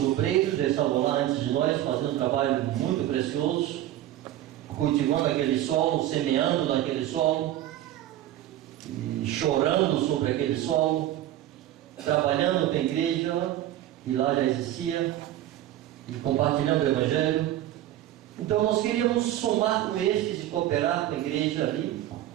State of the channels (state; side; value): quieter; left; 13.3 dB